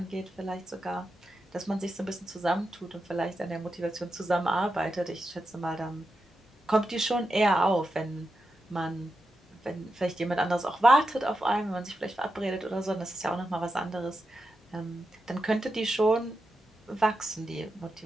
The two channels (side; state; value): both; normal; correlation 0.88